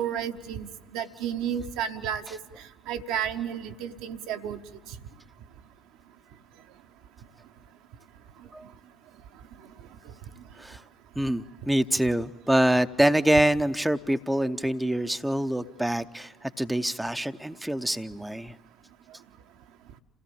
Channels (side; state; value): both; normal; correlation 0.91